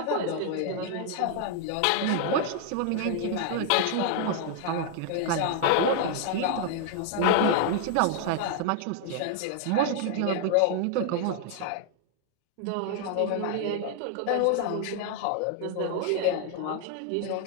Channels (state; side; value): different; both; correlation 0.00